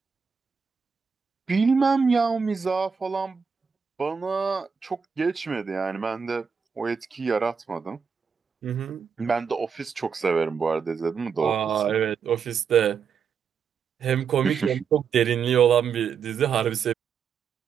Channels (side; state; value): left; quieter; 6.3 dB